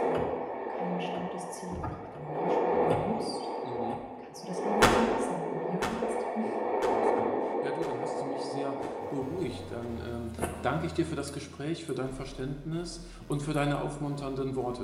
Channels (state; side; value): identical; both; correlation 1.00